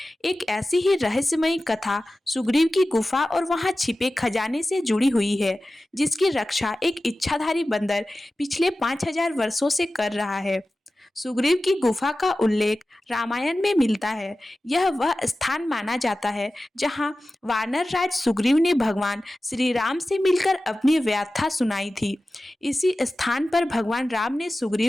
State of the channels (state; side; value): normal; both; correlation 0.95